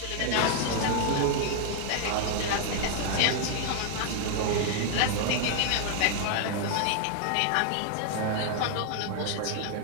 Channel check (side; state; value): both; different; correlation 0.00